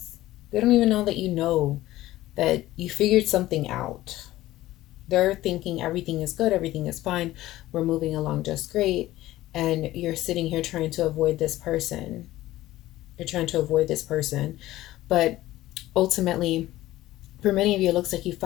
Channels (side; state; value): right; quieter; 15.9 dB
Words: They don't even know that you know that you figured something out. They're thinking everything is good, everything is fine, we're moving along just great, and you're sitting here trying to avoid this person. You're trying to avoid this person. But ultimately, for many of you, it looks like you